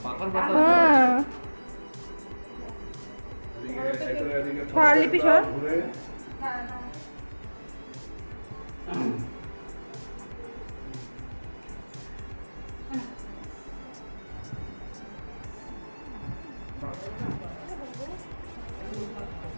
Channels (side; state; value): both; inverted; correlation -1.00